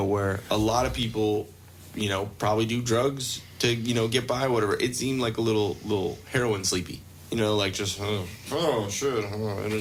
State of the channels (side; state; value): both; identical; correlation 1.00